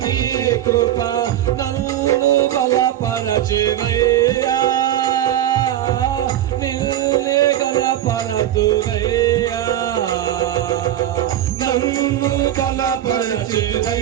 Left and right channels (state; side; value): quieter; left; 12.2 dB